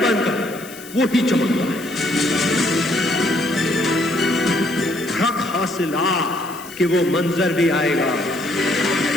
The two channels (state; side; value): noise; left; hiss, 17 dB below the sound